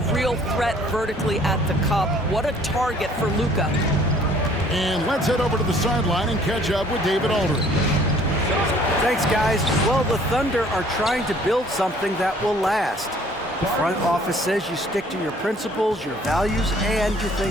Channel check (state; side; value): normal; both; correlation 0.57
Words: real threat vertically at the cup. What a target for Luka. And let's head over to the sideline and catch up with David Aldridge. Thanks, guys. Well, the Thunder are trying to build something that will last. The front office says you stick to your principles, your values, and you